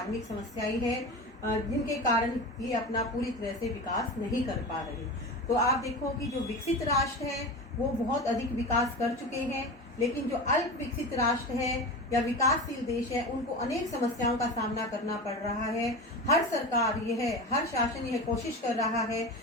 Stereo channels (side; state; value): both; normal; correlation 0.27